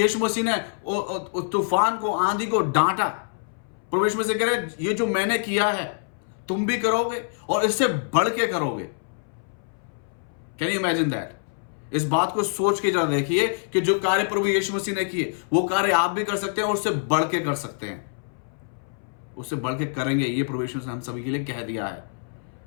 मसीह ने उस तूफान को, आंधी को डांटा। प्रभु यीशु मसीह कह रहे, ये जो मैंने किया है तुम भी करोगे, और इससे बढ़ के करोगे। Can you imagine that? इस बात को सोच के जरा देखिए कि जो कार्य प्रभु यीशु मसीह ने किए, वो कार्य आप भी कर सकते हैं, और उससे बढ़ के कर सकते हैं, उससे बढ़ के करेंगे। ये प्रभु यीशु ने हम सभी के लिए कह दिया है।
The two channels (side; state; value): right; silent; 61 dB below the other